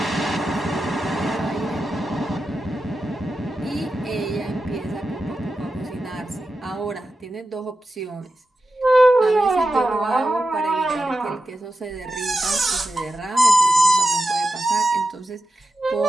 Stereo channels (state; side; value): normal; both; correlation 0.90